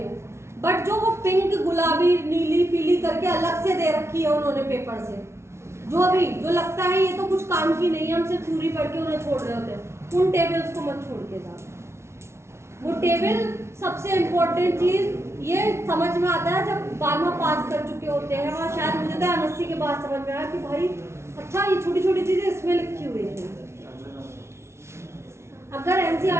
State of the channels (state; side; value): late; left; 0.13 ms